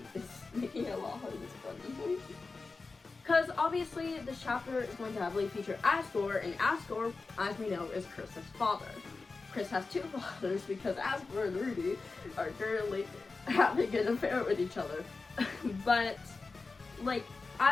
it's making it a lot harder to funny. Because obviously this chapter is going to heavily feature Asgore, and Asgore, as we know, is Kris's father. Kris has 2 fathers because Asgore and Rudy are currently having an affair with each other. But, like,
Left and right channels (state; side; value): quieter; right; 4.0 dB